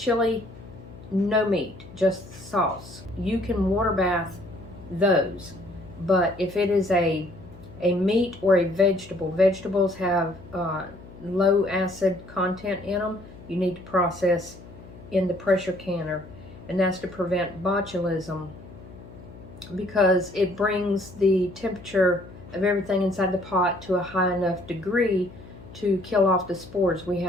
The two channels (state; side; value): noise; left; hum, 18 dB below the sound